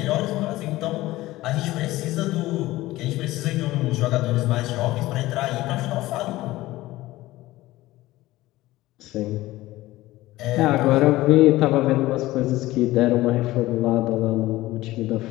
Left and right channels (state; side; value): quieter; right; 17.4 dB